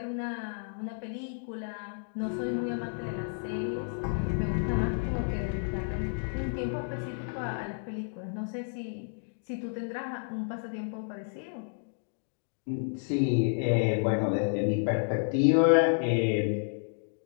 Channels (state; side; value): silent; right; digital silence